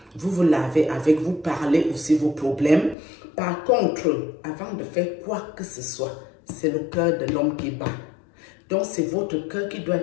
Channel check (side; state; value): right; drops out; at 3.0 s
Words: Vous vous lavez avec, vous parlez aussi vos problèmes. Par contre, avant de faire quoi que ce soit, c'est le cœur de l'homme qui bat. Donc, c'est votre cœur qui doit